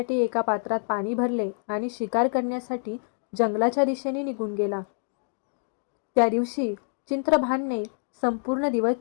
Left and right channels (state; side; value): silent; right; digital silence